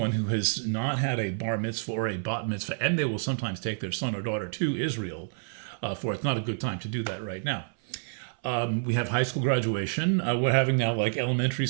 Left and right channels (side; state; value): left; silent; 59 dB below the other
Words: who has not had a bar mitzvah or a bat mitzvah, and they will sometimes take their son or daughter to Israel for it's not a good time to do that right now. We have high school graduation. We're having now like elementary